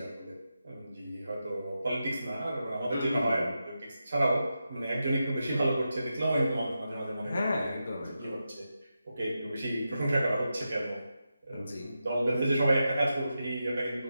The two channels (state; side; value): inverted; both; correlation -0.89